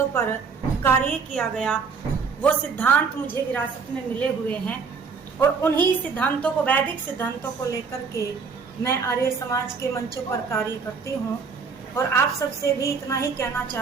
पर कार्य किया गया वो सिद्धांत मुझे विरासत में मिले हुए हैं और उन्हीं सिद्धांतों को, वैदिक सिद्धांतों को लेकर के मैं आर्य समाज के मंचों पर कार्य करती हूँ। और आप सबसे भी इतना ही कहना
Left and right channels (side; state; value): left; quieter; 5.3 dB